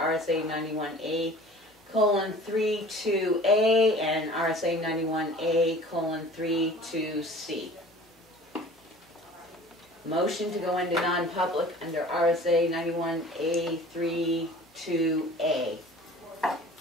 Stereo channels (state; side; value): normal; both; correlation 0.45